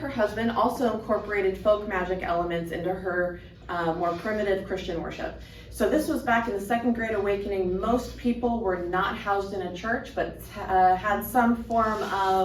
her husband, also incorporated folk magic elements into her more primitive Christian worship. So this was back in the Second Great Awakening. Most people were not housed in a church, but had some form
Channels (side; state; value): both; identical; correlation 1.00